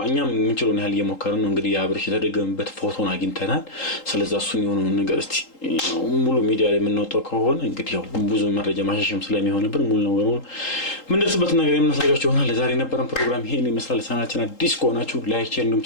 እኛም የምንችለውን ያህል እየሞከርን ነው። እንግዲህ የአብርሽ የተደገመበት ፎቶን አግኝተናል። ስለዚህ እሱን የሆነው ነገር እስቲ ሙሉ ሚዲያ ላይ የምንወጣው ከሆነ እንግዲህ ያው ብዙ መረጃ ማሻሻም ስለሚሆንብን ሙሉ ነው ወሩን ምን ደርስበት ነገር የምናሳያችሁ ይሆናል። ለዛሬ የነበረን ፕሮግራም ይሄን ይመስላል። ቻናላችን አዲስ ከሆናችሁ ላይክ፣ ሼር፣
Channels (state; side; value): late; right; 3.8 ms